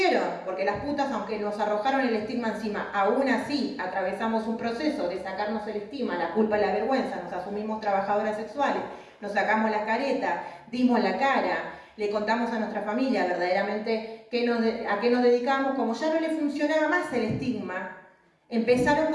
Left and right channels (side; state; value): both; identical; correlation 1.00